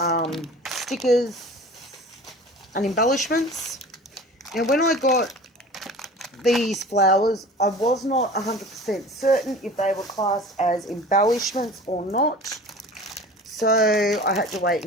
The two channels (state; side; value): normal; both; correlation 0.40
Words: stickers and embellishments. Now, when I got these flowers, I was not 100% certain if they were classed as embellishments or not. So I had to wait